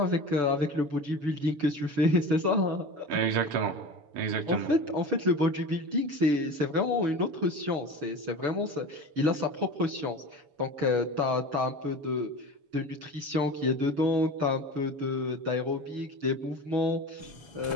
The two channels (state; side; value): late; left; 6.2 ms